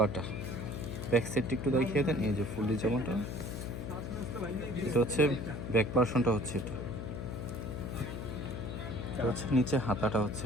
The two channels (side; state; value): left; noise; hum, 6 dB below the sound